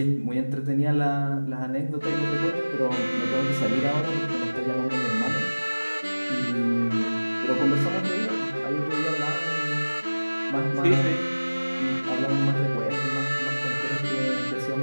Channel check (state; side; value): inverted; both; correlation -1.00